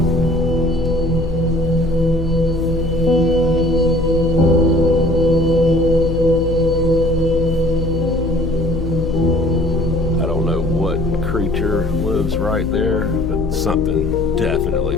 Creature lives right there, but something definitely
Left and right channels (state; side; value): noise; left; hum, 5 dB below the sound